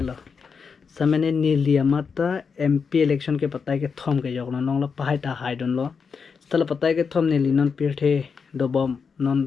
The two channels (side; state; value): right; quieter; 5.7 dB